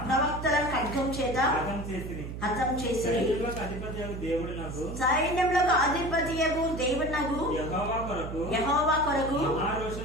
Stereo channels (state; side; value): noise; right; hum, 8 dB below the sound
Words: చేత హతం చేసి సైన్యములకు అధిపతియగు దేవుడనగు యెహోవా కొరకు